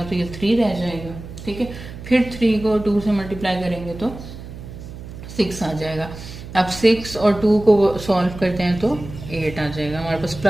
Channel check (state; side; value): noise; right; hum, 13 dB below the sound